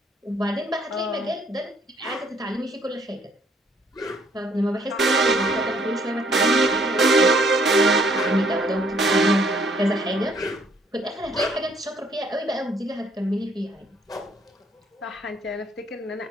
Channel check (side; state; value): both; normal; correlation 0.64